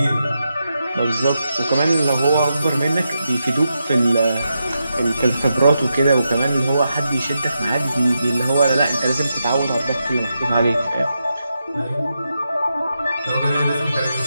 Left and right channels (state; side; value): inverted; both; correlation -0.86